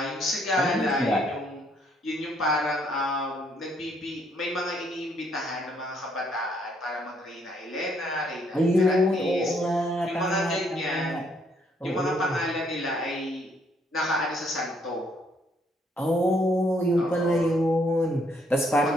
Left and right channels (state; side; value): normal; both; correlation 0.69